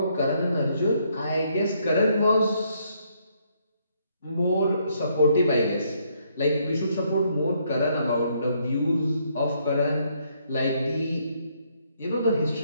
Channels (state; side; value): inverted; both; correlation -0.70